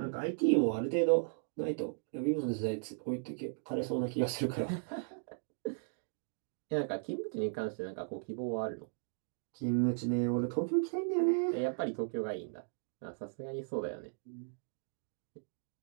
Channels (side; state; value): left; silent; digital silence